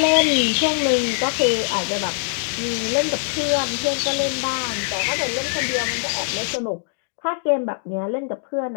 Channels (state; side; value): silent; right; digital silence